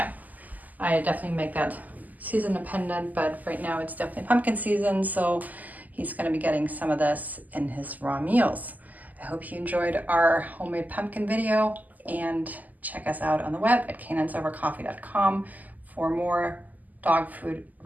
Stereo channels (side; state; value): left; late; 0.081 ms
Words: I definitely make that season dependent, but right now it's definitely pumpkin season. So he's gonna be getting some of this in his raw meals. I hope you enjoyed our homemade pumpkin video, and check us out on the web at canines-over-coffee.com for more dog food